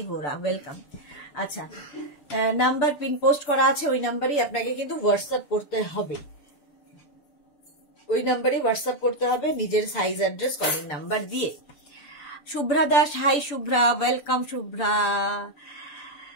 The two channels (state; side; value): late; right; 6.9 ms